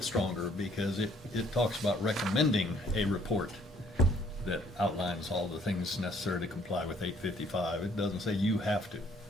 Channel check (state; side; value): normal; both; correlation 0.62